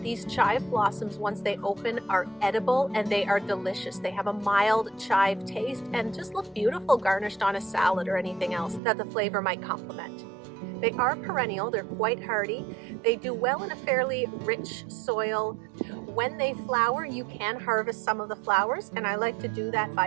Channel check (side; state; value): left; drops out; at 8.8 s